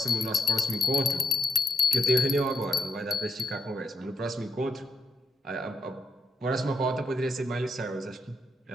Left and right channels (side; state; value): both; normal; correlation 0.80